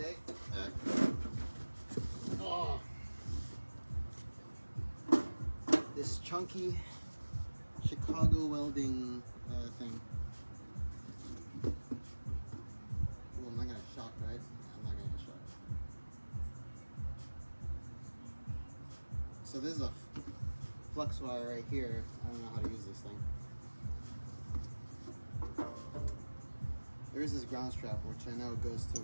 This chunky Chicago welding thing. Well, I'm not gonna shock, right? I'm not gonna get shocked. So this is a flux wire right here. I don't know how to use this thing. There is this ground strap, which I know goes to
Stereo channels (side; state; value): both; inverted; correlation -1.00